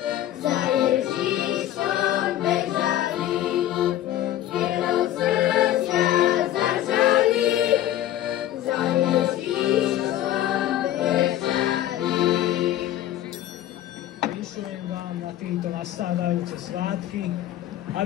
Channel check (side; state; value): right; quieter; 12.9 dB